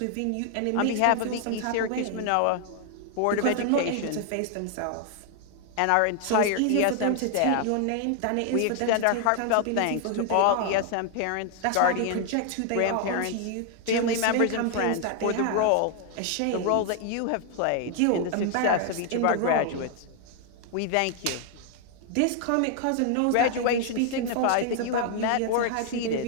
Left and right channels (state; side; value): different; both; correlation 0.00